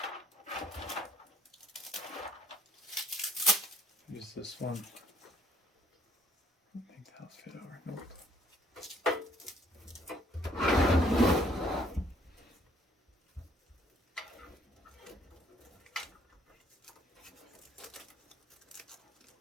Use this one. I think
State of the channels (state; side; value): normal; both; correlation 0.63